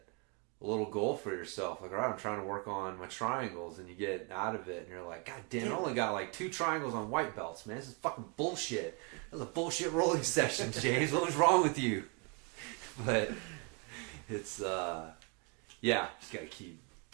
a little goal for yourself. Like, all right, I'm trying to work on my triangles, and you get out of it and you're like, God damn, I only got like 2 triangles on white belts, man. This is fucking bullshit. That was a bullshit rolling session, James. What was wrong with you? But it's yeah, just gotta keep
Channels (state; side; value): quieter; left; 34.5 dB